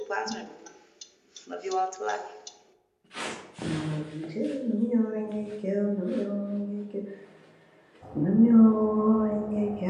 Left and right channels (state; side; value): identical; both; correlation 1.00